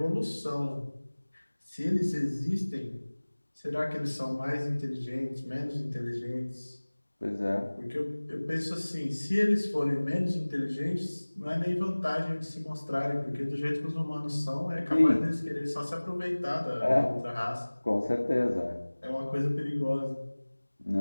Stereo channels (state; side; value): inverted; both; correlation -1.00